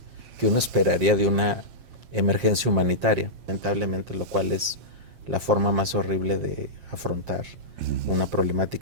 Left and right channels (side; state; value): left; late; 7.5 ms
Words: que uno esperaría de una emergencia humanitaria, lamentablemente, lo cual es la forma más horrible de afrontar una